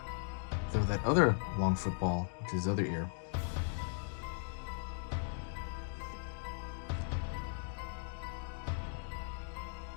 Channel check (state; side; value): silent; right; digital silence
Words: throw that other long football, which is his other ear.